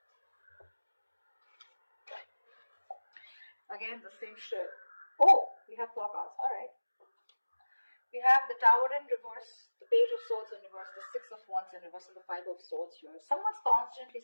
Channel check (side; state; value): both; inverted; correlation -1.00